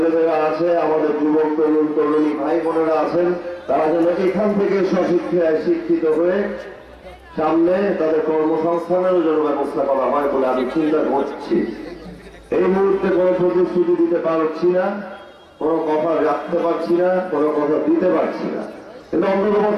আছে, আমাদের যুবক তরুণ তরুণী ভাই বোনেরা আছেন, তারা যেন এখান থেকে স্বশিক্ষায় শিক্ষিত হয়ে সামনে তাদের কর্মসংস্থানেরও যেন ব্যবস্থা করা হয় বলে আমি চিন্তা করছি। এই মুহূর্তে কোনো প্রতিশ্রুতি দিতে পারছি না, কোনো কথা রাখতে পারছি না, কোনো কথা দিতে পারছি না, কিন্তু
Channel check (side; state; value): both; identical; correlation 1.00